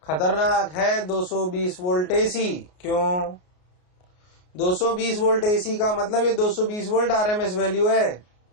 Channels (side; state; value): right; late; 33 ms